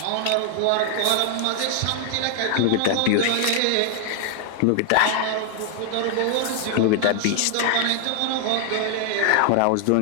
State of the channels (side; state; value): both; different; correlation 0.00